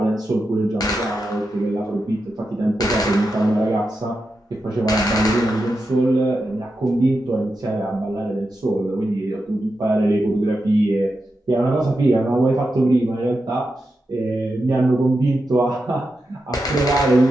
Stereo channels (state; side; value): normal; both; correlation 0.88